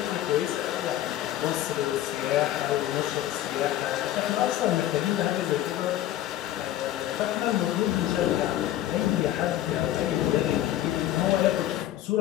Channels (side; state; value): right; quieter; 13.3 dB